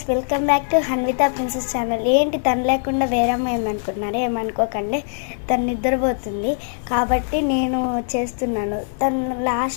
welcome back to Hanvitha princess channel. ఏంటి తను లేకుండా వేరే అమ్మాయి ఏమనుకుంటున్నారే, ఏమనుకోకండి. తను నిద్రపోతుంది కాబట్టి నేను చేస్తున్నాను. తను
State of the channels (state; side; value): silent; right; 65 dB below the other